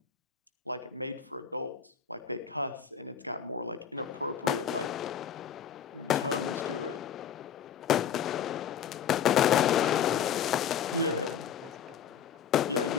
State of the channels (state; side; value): quieter; right; 8.1 dB